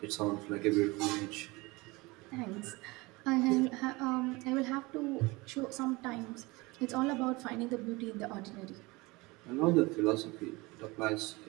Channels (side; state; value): left; quieter; 23.6 dB